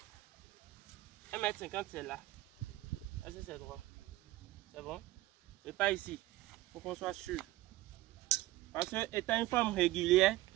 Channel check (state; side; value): quieter; left; 17.1 dB